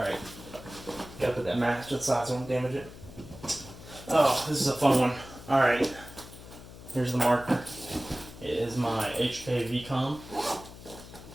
Gotta put that mask to the side so I don't damage it. Oh, this is a fun one. Alright. Here's the marker. It is my HK VCOM.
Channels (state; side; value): noise; left; hum, 16 dB below the sound